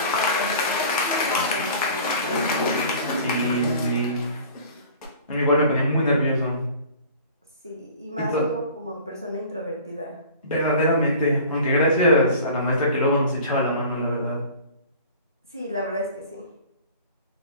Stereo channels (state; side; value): inverted; both; correlation -0.44